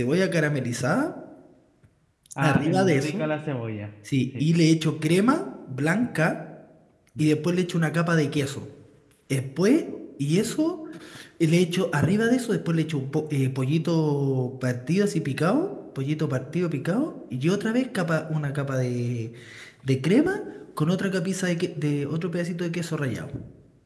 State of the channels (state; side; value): identical; both; correlation 1.00